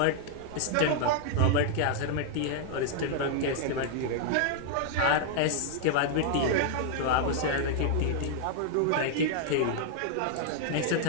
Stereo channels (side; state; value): both; different; correlation 0.00